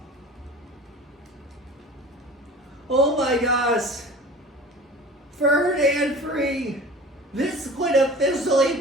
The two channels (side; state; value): both; normal; correlation 0.40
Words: Oh my gosh. 3rd and 3. This would officially